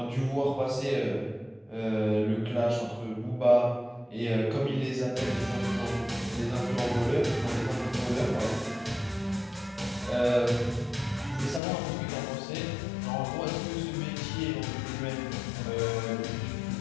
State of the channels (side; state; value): right; drops out; at 11.6 s